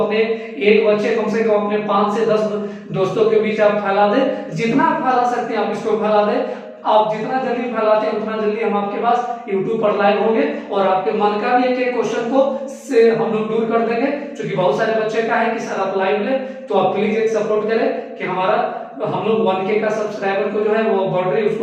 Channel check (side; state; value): both; identical; correlation 1.00